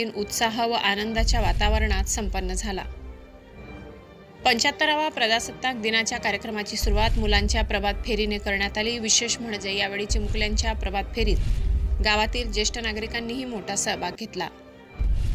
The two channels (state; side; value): identical; both; correlation 1.00